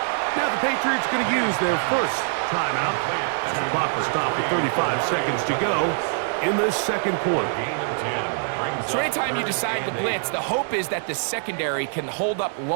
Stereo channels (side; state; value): left; silent; digital silence